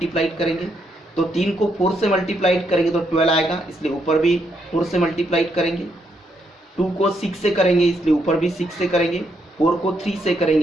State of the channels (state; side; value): normal; both; correlation 0.77